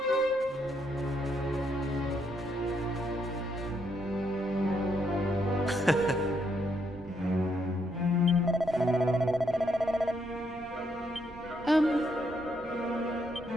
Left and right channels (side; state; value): both; normal; correlation 0.75